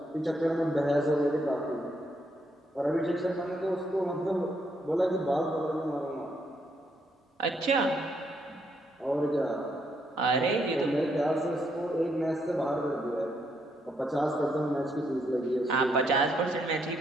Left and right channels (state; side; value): normal; both; correlation 0.75